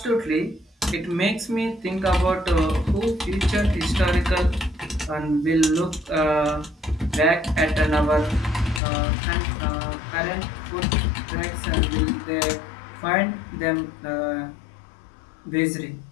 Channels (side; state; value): right; drops out; at 8.8 s